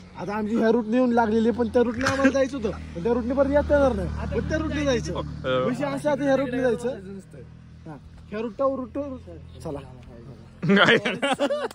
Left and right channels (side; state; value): both; identical; correlation 1.00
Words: आता आमची ह्या रूटने येऊन लागलेली, पण त्या रूटने आम्हाला जायचं होतं, पण त्या रूटने परत येता येणार नाही. पण त्या रूटने जायचं विषय असा. आता ह्या रूटने जायचं. ह्या रूट चला